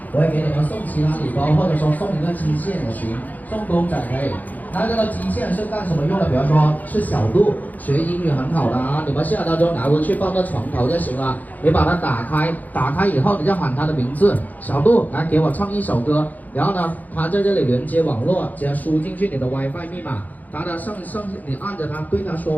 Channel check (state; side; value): late; right; 0.081 ms